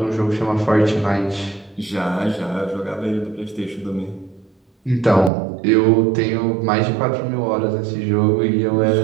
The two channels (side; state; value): left; drops out; at 5.3 s